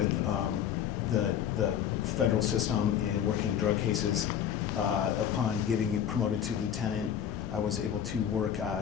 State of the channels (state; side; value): quieter; right; 9.3 dB